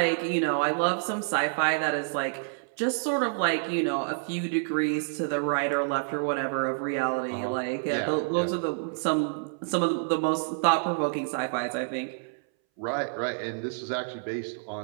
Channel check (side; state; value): left; silent; 59 dB below the other